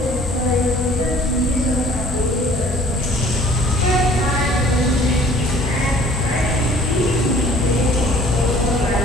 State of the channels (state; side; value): normal; both; correlation 0.54